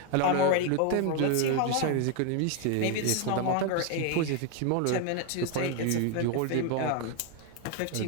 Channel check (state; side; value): different; both; correlation 0.01